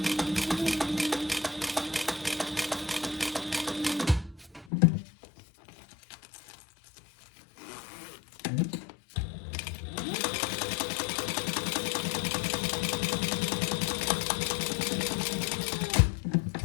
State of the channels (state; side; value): drops out; right; at 4.7 s